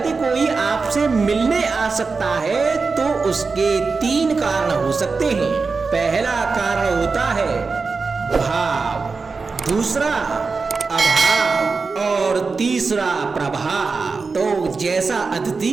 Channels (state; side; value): quieter; left; 4.4 dB